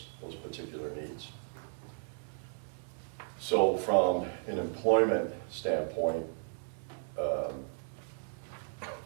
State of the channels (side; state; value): left; silent; digital silence